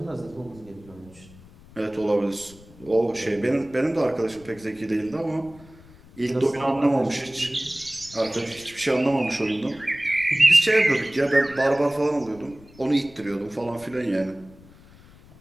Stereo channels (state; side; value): noise; left; rumble, 23 dB below the sound